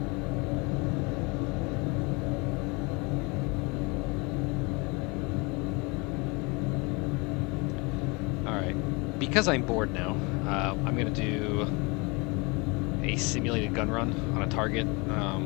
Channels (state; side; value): quieter; right; 28.2 dB